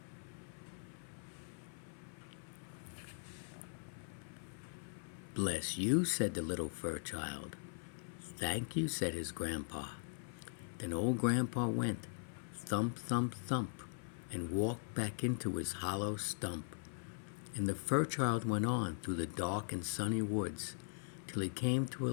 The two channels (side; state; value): right; silent; 51 dB below the other